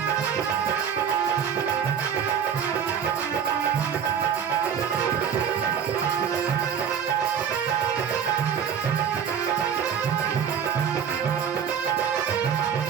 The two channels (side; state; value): left; quieter; 7.7 dB